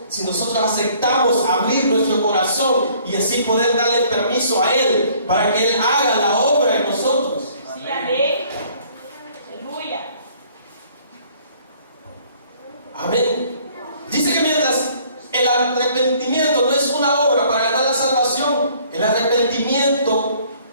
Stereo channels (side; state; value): both; inverted; correlation -0.58